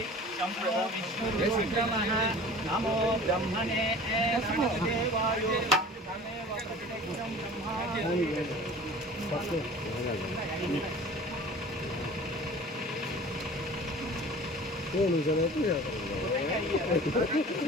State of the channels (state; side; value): normal; both; correlation 0.42